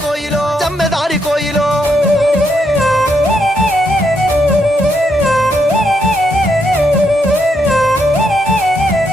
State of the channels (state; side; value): normal; both; correlation 0.78